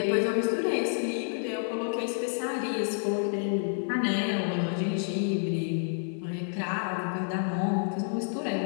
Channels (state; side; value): silent; right; 58 dB below the other